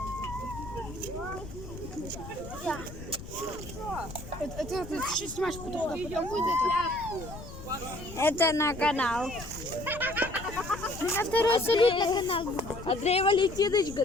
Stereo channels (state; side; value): noise; left; rumble, 12 dB below the sound